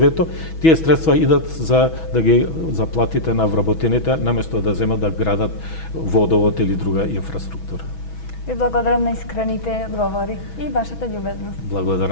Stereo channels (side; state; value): right; late; 6.2 ms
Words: тие средства идат за да ги заплатите на вработените, наместо да земат да градат водовод или друга инфраструктура. Ви благодарам на искрените одговори и вашата љубезност.